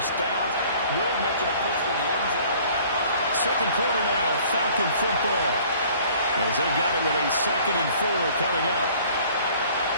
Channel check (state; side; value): inverted; both; correlation -0.53